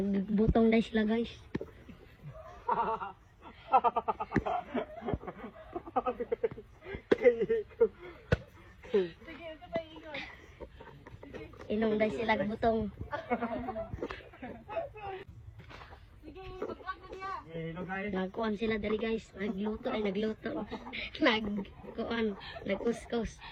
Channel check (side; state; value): both; identical; correlation 1.00